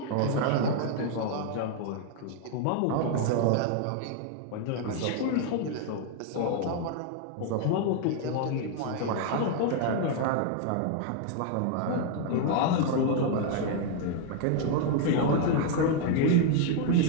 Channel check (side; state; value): both; different; correlation 0.00